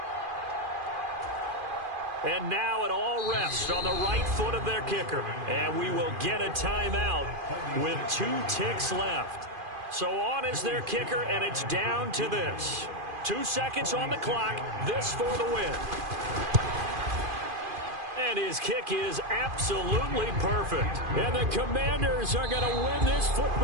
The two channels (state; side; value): late; left; 2.5 ms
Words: And now it all rests on the right foot of their kicker. And we will get a timeout with 2 ticks left. So on is their kicker, and it's down to this. 2 seconds on the clock. This for the win. And his kick is absolutely perfect. And the Commanders are going to win this